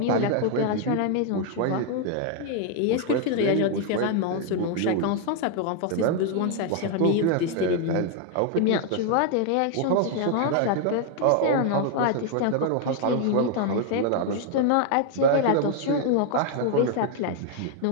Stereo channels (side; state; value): both; different; correlation 0.00